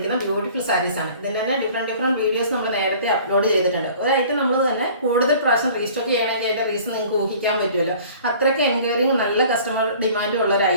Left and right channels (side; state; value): both; inverted; correlation -0.49